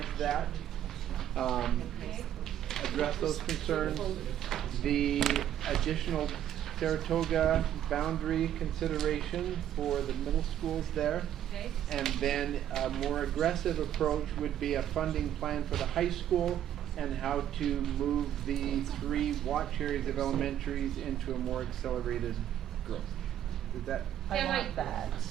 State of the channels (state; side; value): quieter; left; 11.0 dB